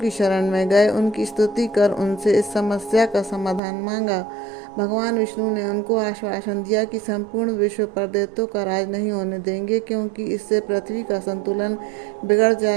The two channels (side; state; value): left; drops out; at 3.6 s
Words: शरण में गए। उनकी स्तुति कर उनसे इस समस्या का समाधान मांगा। भगवान विष्णु ने उनको आश्वासन दिया कि संपूर्ण विश्व पर दैत्यों का राज नहीं होने देंगे, क्योंकि इससे पृथ्वी का संतुलन बिगड़